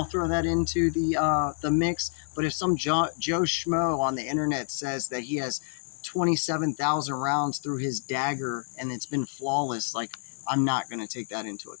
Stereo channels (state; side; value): silent; right; 55 dB below the other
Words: throw that into the mix. But if some Joe Schmo on the internet says that he has 27,000 rounds through his dagger and it's been flawless, like, I'm not going to take that into